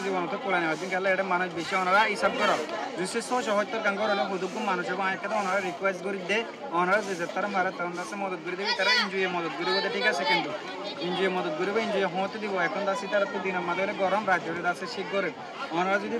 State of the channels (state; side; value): identical; both; correlation 1.00